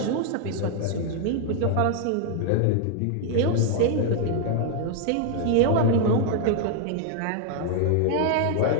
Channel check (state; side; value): different; both; correlation 0.00